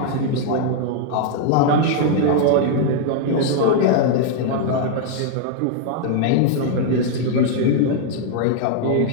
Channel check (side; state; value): both; different; correlation -0.01